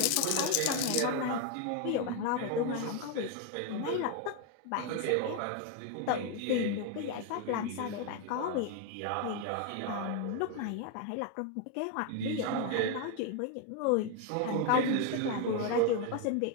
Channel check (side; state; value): both; different; correlation 0.01